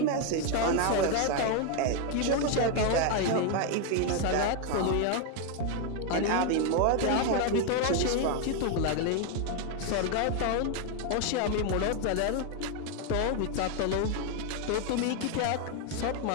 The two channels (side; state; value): both; different; correlation 0.01